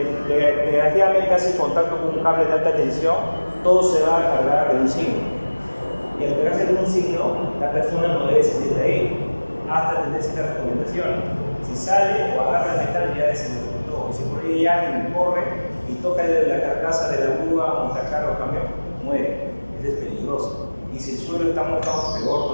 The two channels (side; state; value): both; inverted; correlation -1.00